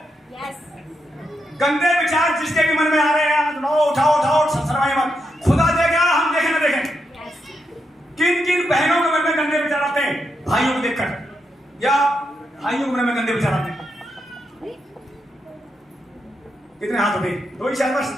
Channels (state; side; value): normal; both; correlation 0.83